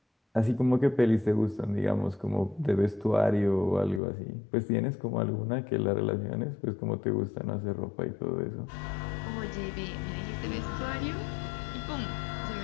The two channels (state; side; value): drops out; right; at 4.0 s